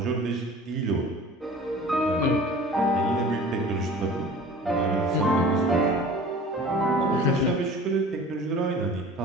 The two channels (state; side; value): normal; both; correlation 0.43